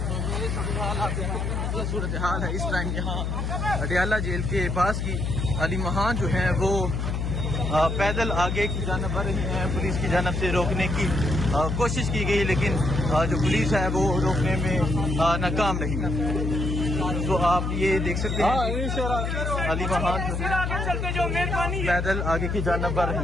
सूरत हाल है इस टाइम यहाँ अडियाला जेल के पास की। अली महान जो है वो पैदल आगे की जानब बढ़ रही हैं। पुलिस की जानब से रोकने की कोशिश की गई, लेकिन जो पुलिस है वो रोकने में नाकाम रही। तो आप ये देख सकते हैं अली महान जो पैदल आगे की जानब बढ़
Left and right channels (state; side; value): noise; left; hum, 1 dB below the sound